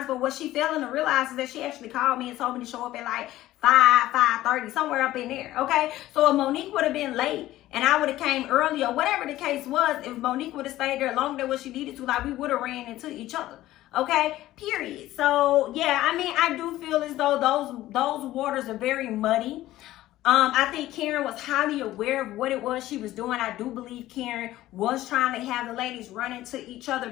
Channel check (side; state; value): right; quieter; 15.3 dB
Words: But what she failing to realize is that she actually called me and told me to show up at like 5:30, somewhere up in there. Okay, so if Monique would have been late and I would have came early or whatever the case was, if Monique would have stayed there longer than what she needed to, like we would have ran into each other. Okay, period. So yeah, I mean, I do feel as though those waters are very muddy. I think Karen was highly aware of what it was she was doing. I do believe Karen was trying to have the ladies run into each other,